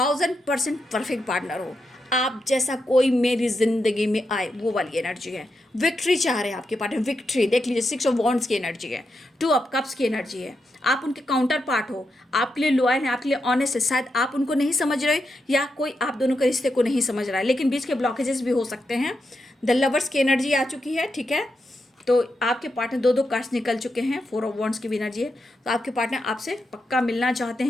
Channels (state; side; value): normal; both; correlation 0.85